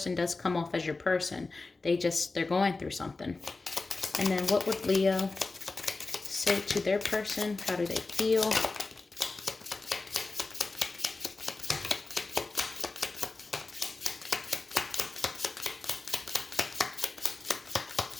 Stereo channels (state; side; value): quieter; right; 3.6 dB